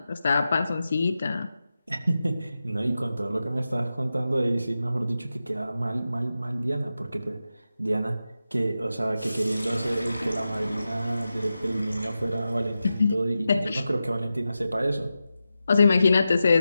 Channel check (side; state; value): both; inverted; correlation -0.92